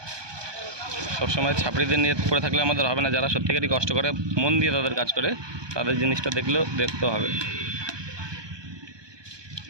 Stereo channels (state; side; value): late; left; 1.2 ms